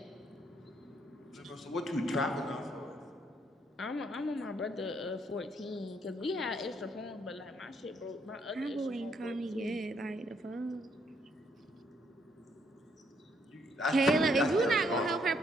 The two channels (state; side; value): normal; both; correlation 0.71